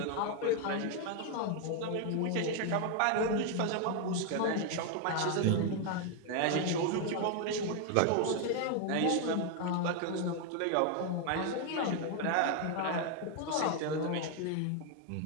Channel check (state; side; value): different; both; correlation 0.01